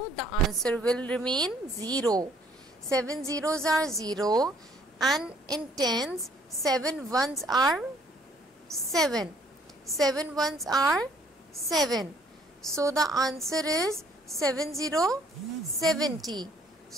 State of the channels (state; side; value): normal; both; correlation 0.62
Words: the answer will remain 0. 7 zeros are 0. And in tens, 7 ones are 7. 7 ones are 7. So the answer is 70.